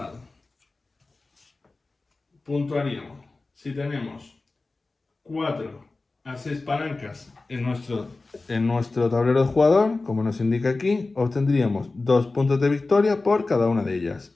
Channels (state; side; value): quieter; right; 3.5 dB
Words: puntuaríamos si tenemos 4 a 6 palancas en nuestro tablero de jugador, como nos indica aquí, obtendríamos 2 puntos de victoria por cada una de ellas.